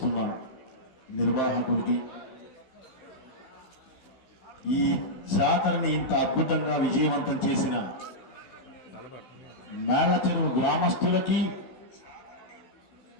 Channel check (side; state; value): right; late; 15 ms